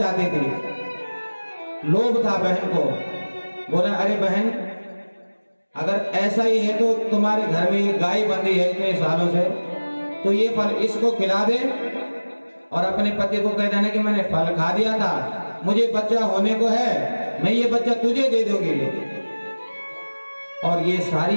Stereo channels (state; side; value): inverted; both; correlation -1.00